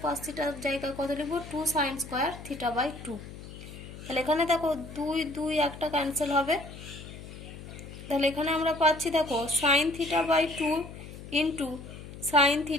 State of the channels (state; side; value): noise; left; hum, 13 dB below the sound